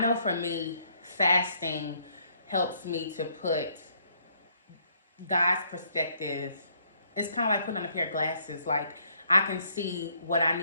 for me, fasting helps me to put God's perspective. It's kind of like putting on a pair of glasses. Like, I can see what I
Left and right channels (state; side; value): inverted; both; correlation -0.68